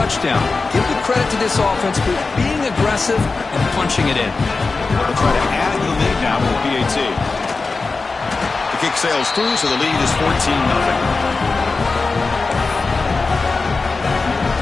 Give the credit to this offense for being aggressive and punching it in. They'll try to add to the lead now with the PAT. The kick sails through, so the lead is 14-0.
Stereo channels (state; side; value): quieter; right; 4.0 dB